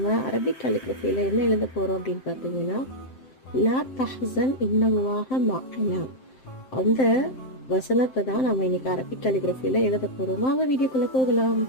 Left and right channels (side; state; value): right; late; 7.7 ms